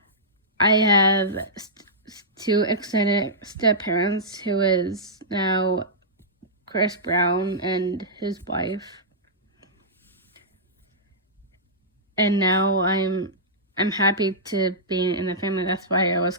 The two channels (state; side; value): normal; both; correlation -0.14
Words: I have two extended step-parents, who is now Chris Brown and his wife. And now I'm happy to be in the family. That's why I was